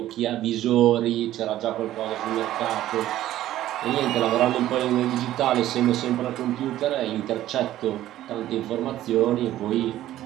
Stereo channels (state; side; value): quieter; left; 13.6 dB